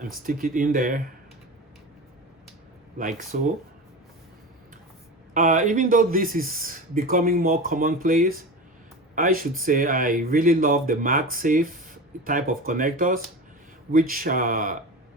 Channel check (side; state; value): both; normal; correlation 0.28